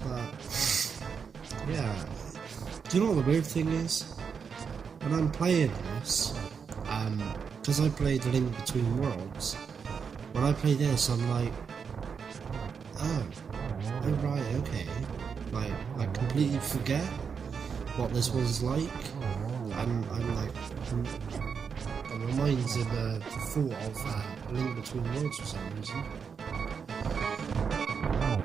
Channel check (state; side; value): quieter; left; 6.3 dB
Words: yeah. Do you know what the weird thing is? When I'm playing this, because I played Link Between Worlds, when I play this, I'm like, oh right, okay. Like, I completely forget what this was like, and I'm like, my mind's in the thought of Link Between Worlds for some reason.